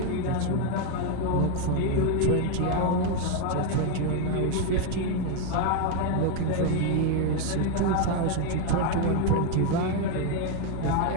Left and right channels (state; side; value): different; both; correlation 0.01